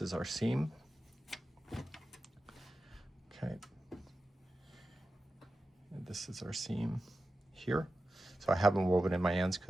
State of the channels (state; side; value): normal; both; correlation 0.92